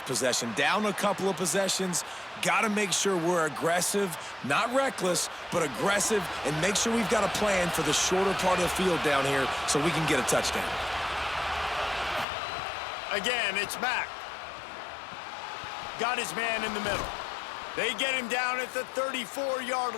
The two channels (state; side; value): drops out; right; at 12.2 s